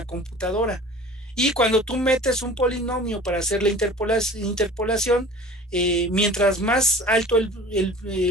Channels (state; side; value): normal; both; correlation 0.43